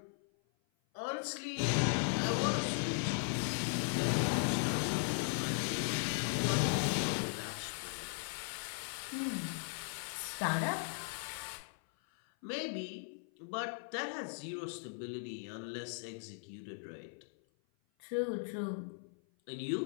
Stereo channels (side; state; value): right; silent; 53 dB below the other